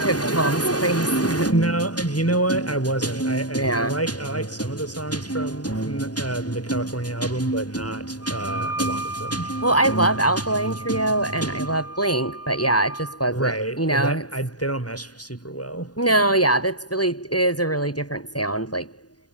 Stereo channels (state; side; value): late; right; 0.69 ms